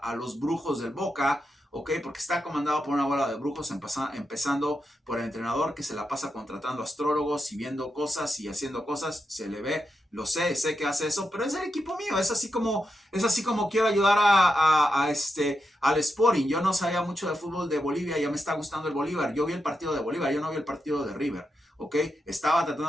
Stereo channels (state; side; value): normal; both; correlation 0.86